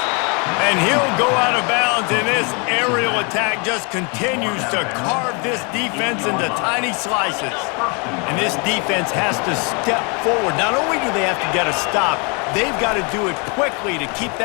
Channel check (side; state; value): right; quieter; 33.1 dB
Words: And he'll go out of bounds, and this aerial attack just continues to carve this defense into tiny slices. And this defense has to step forward. Not only do they have to get a stop, they've got to do it quickly to keep